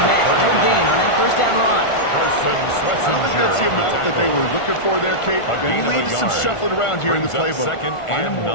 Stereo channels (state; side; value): late; right; 1.4 ms